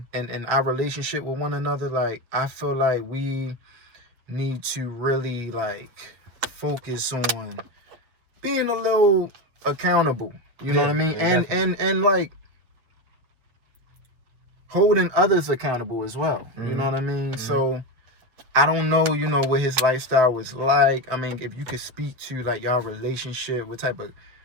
and our relationship with one another, like, I feel like we need to really like focus on being a little accountable. You know what I mean? And like holding others accountable as well. You know what I mean? So. I don't know, what his lifestyle was like. I mean, if you could speak to, like, y'all relationship, what type of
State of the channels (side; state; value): left; late; 7.7 ms